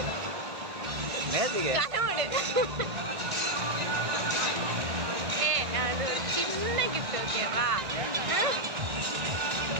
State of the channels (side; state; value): left; late; 1.6 ms